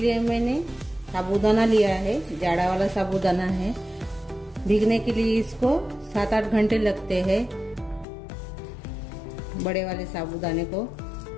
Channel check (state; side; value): drops out; right; at 8.1 s